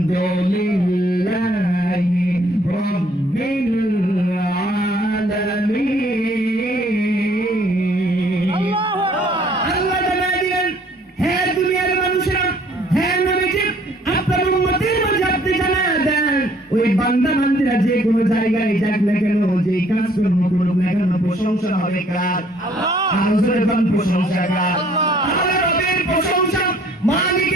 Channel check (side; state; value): both; normal; correlation 0.60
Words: রাব্বিল আলামিন। আল্লাহ জানায় দিলেন, হে দুনিয়ার মানুষেরা, হে নবীজি, আপনার উম্মতের মাঝে আপনি জানায় দেন, ওই বান্দা বান্দীরা যে কোনো জায়গায় যাক না কেন, যে কাজ কর্ম করুক না কেন, প্রশংসা হবে কার? আল্লাহ। আর প্রশংসা কার? আল্লাহ। রবের প্রশংসা,